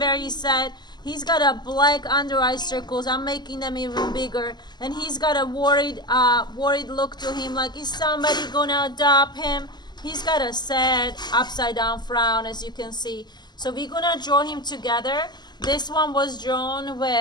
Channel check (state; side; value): late; right; 0.21 ms